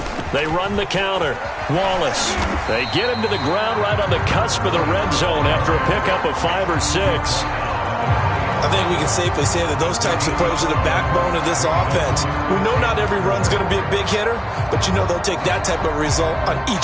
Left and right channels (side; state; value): both; identical; correlation 1.00